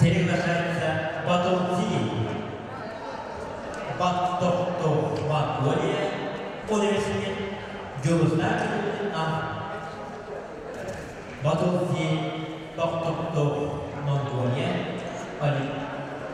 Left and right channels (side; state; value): both; identical; correlation 1.00